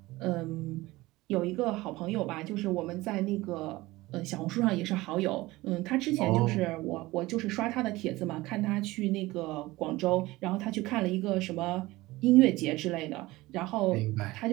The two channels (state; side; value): quieter; left; 19.5 dB